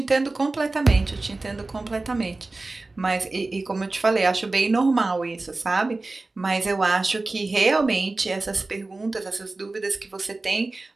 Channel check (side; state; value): left; quieter; 3.3 dB